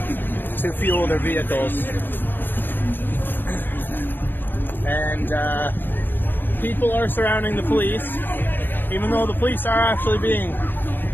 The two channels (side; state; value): right; late; 0.094 ms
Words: to fuel their vehicles. And people are surrounding the police, even though the police are actually being